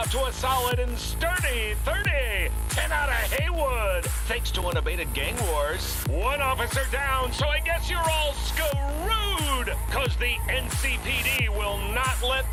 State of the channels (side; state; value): both; identical; correlation 1.00